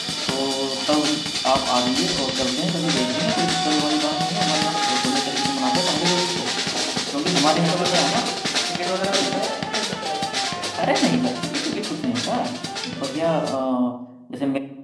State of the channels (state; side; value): identical; both; correlation 1.00